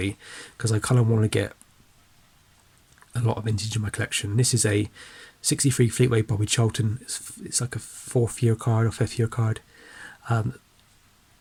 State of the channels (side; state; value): both; identical; correlation 1.00